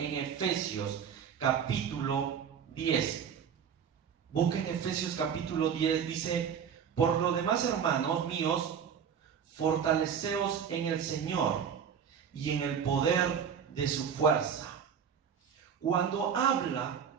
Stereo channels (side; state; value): left; quieter; 7.6 dB